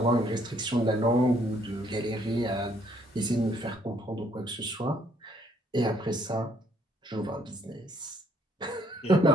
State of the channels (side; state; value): both; normal; correlation 0.66